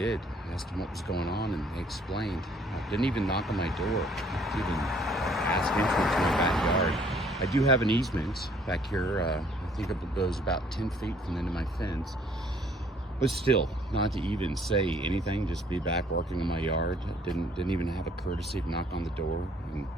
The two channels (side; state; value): both; normal; correlation 0.60